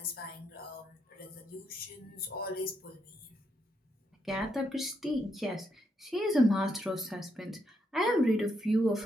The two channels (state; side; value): normal; both; correlation 0.78